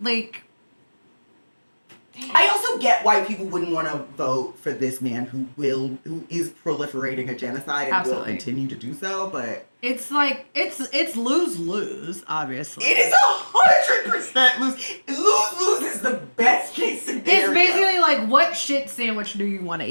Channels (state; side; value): inverted; both; correlation -1.00